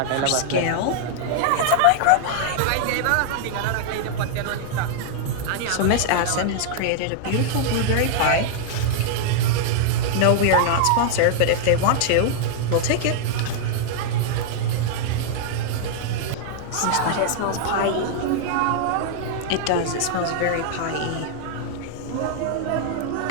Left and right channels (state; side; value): different; both; correlation -0.01